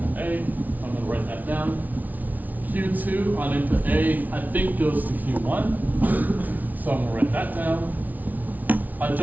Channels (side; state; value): left; late; 0.078 ms